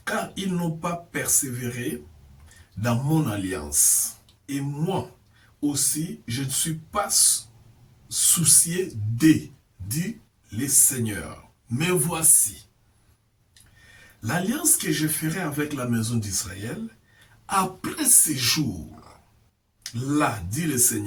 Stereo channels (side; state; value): both; identical; correlation 1.00